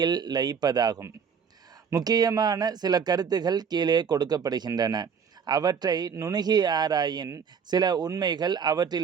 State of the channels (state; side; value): quieter; left; 6.7 dB